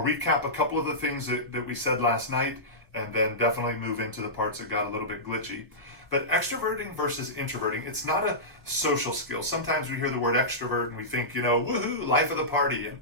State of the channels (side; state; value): both; normal; correlation -0.16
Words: recap a couple of the things that we said last night and then definitely move into the parts that got a little bit glitchy. But extroverting versus introverting, it's not a social skill. Sometimes we hear the word extrovert and we think, woohoo, life of the party, and